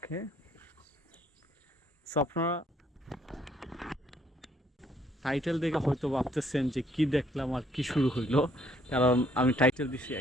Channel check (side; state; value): both; normal; correlation 0.66